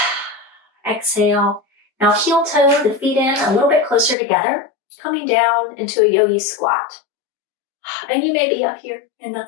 Exhale. Now heel toe the feet in a little bit closer together, coming down into a yogi squat. And you may be up here, and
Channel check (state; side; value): drops out; right; at 4.2 s